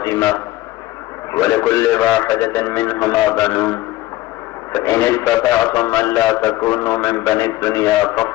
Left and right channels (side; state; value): right; quieter; 17.0 dB